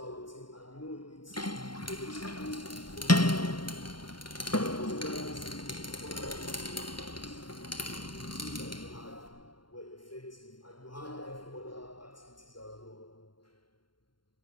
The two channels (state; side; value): late; right; 0.72 ms